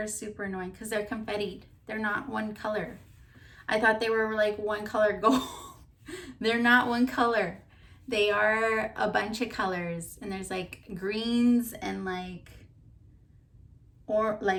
super annoying because they're confettied. They're not one color. I thought they were like one color gold. They're not one color. They are a bunch of colors, and there's like greens and like, or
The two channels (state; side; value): identical; both; correlation 1.00